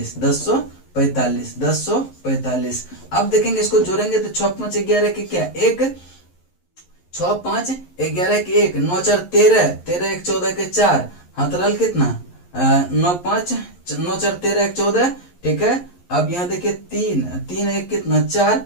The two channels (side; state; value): right; late; 11 ms